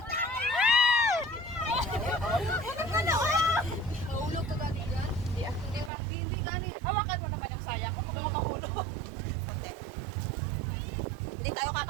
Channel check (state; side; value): drops out; left; at 5.9 s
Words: Mahulog ka gani dyan? Hindi gani. Hawakan mo naman yung sayang ko. Huwag mo mahulog. Hindi tayo